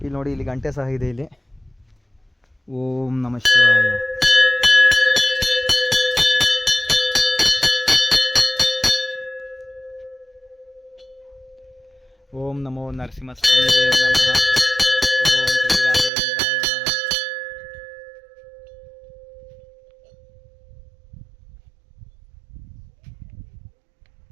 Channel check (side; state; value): left; drops out; at 16.1 s